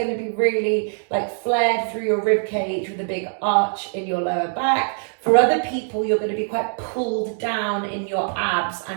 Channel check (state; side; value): silent; left; 64 dB below the other